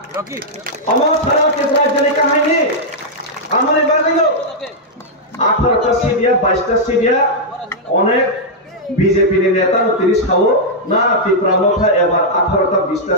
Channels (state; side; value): normal; both; correlation -0.06